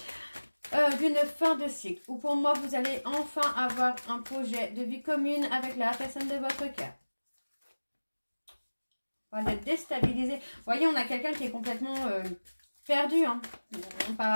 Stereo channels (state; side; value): inverted; both; correlation -1.00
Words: d'une fin de cycle. Ou pour moi, vous allez enfin avoir un projet de vie commune avec la personne de votre cœur. On va être déstabilisé. Vous voyez, on a quelqu'un qui est complètement perdu hein, par